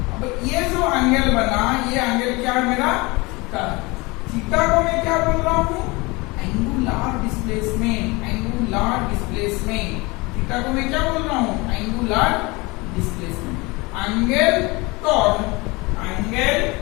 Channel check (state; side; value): quieter; right; 24.8 dB